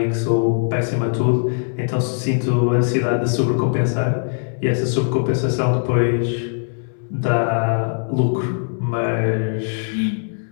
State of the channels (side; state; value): right; silent; 65 dB below the other